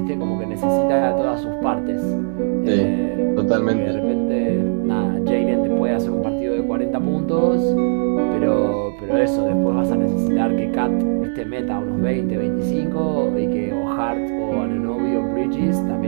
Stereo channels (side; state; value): left; silent; digital silence